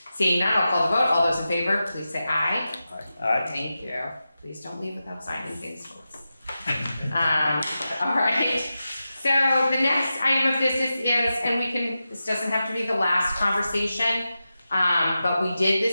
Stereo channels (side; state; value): both; inverted; correlation -0.92